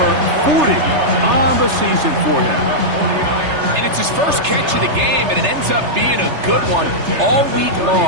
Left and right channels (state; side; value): late; left; 3.3 ms